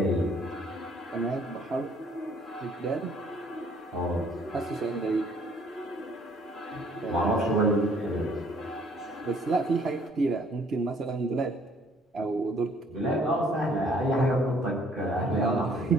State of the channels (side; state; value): both; normal; correlation 0.60